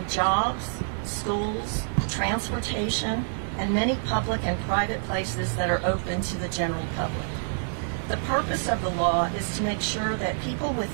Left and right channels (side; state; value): left; silent; digital silence